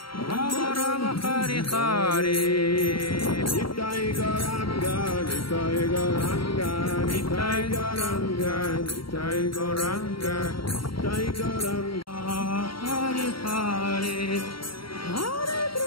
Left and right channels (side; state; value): right; late; 0.74 ms